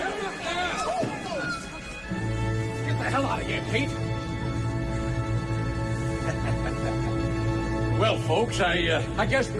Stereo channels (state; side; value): identical; both; correlation 1.00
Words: Get the hell out of here, Pete. Well, folks, I guess